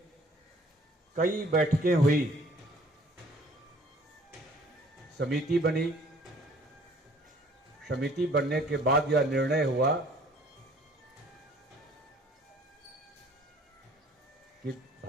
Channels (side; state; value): both; normal; correlation 0.55